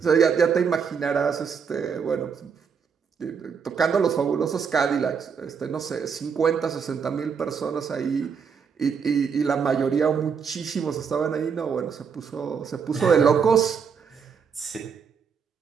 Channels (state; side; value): quieter; left; 6.5 dB